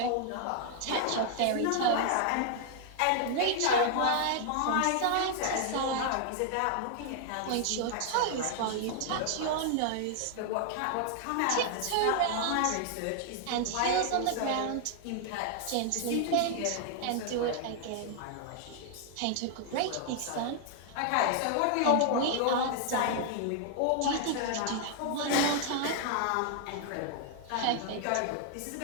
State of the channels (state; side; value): different; both; correlation 0.00